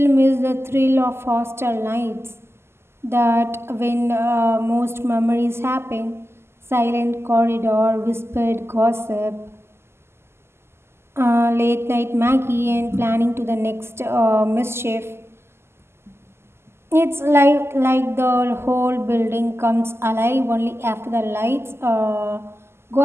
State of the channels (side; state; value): left; late; 0.12 ms